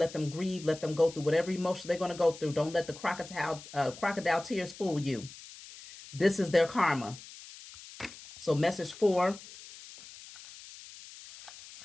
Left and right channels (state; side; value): noise; left; hiss, 17 dB below the sound